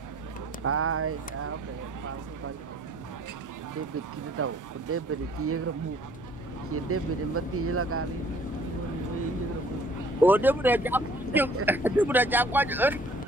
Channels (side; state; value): both; normal; correlation 0.57